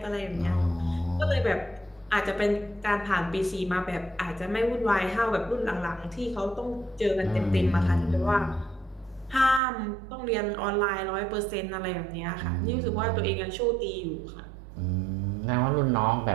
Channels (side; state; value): left; drops out; at 9.6 s